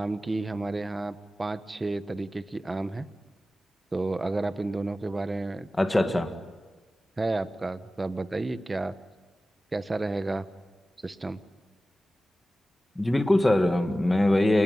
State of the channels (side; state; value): both; normal; correlation 0.96